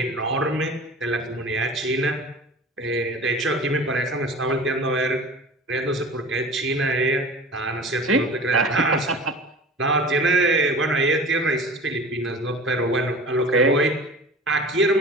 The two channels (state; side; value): normal; both; correlation 0.38